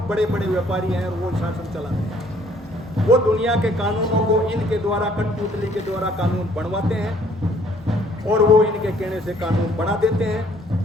बड़े बड़े व्यापारी हैं और वो शासन चलाते हैं। वो दुनिया के कानूनों को इनके द्वारा कठपुतली के द्वारा कानून बनवाते हैं और वो इनके कहने से कानून बना देते हैं।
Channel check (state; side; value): normal; both; correlation 0.61